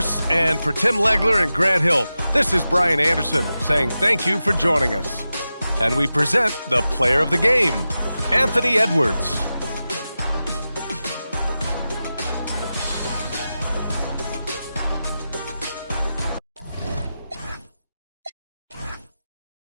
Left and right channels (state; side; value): inverted; both; correlation -0.93